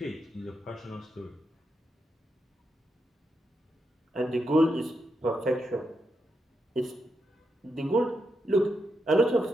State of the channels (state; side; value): normal; both; correlation 0.84